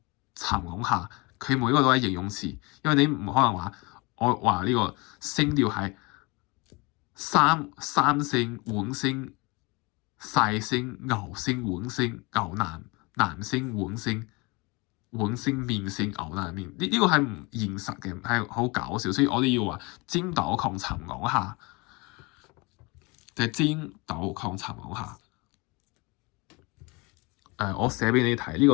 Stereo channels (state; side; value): quieter; right; 26.9 dB